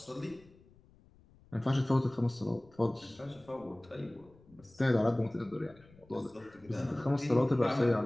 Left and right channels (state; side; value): noise; left; rumble, 27 dB below the sound